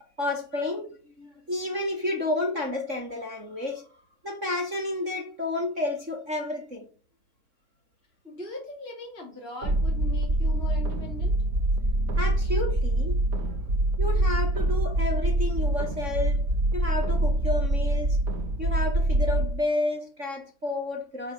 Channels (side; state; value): left; late; 3.6 ms